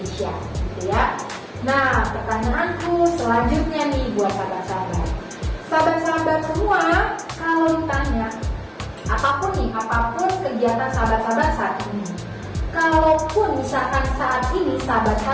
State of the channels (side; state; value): both; identical; correlation 1.00